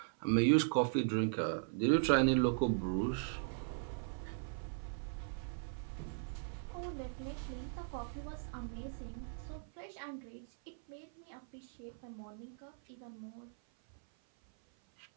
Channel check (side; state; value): left; silent; 52 dB below the other